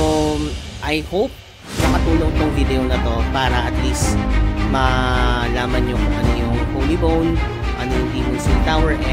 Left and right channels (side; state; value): both; identical; correlation 1.00